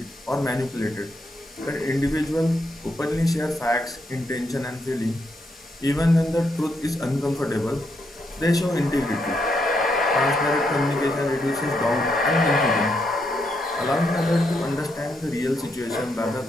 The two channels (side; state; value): both; normal; correlation 0.79